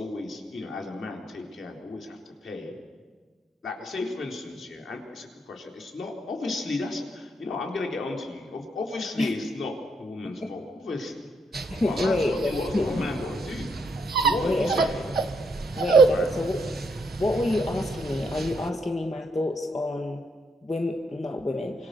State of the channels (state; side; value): normal; both; correlation 0.75